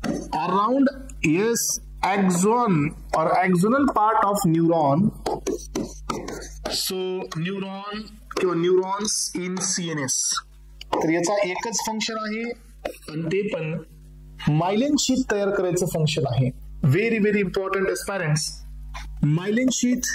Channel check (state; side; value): identical; both; correlation 1.00